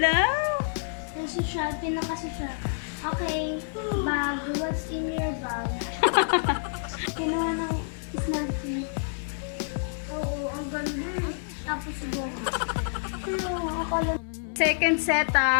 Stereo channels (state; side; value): silent; right; 59 dB below the other